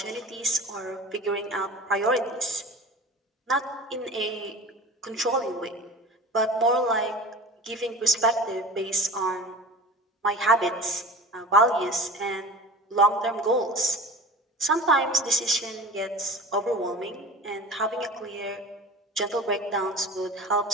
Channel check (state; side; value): normal; both; correlation 0.36